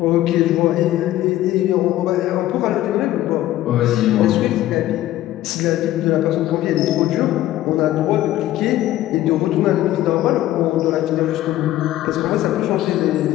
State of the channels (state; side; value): quieter; right; 14.3 dB